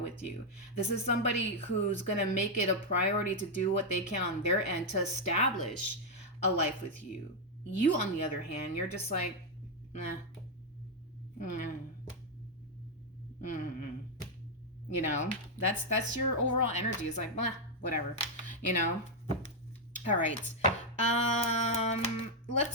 you. This is somebody who's going to make it a priority to do what they can on their end to establish a life with you. You, on the other hand, you're just like, nah. That's your overall energy. It's like, blah, whatever, all right.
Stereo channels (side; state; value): both; normal; correlation 0.00